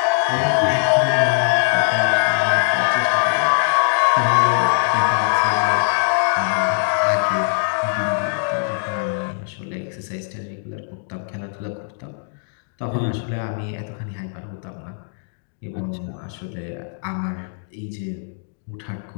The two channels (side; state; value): right; silent; digital silence